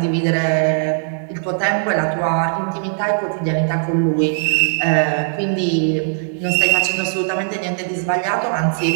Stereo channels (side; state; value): left; silent; 67 dB below the other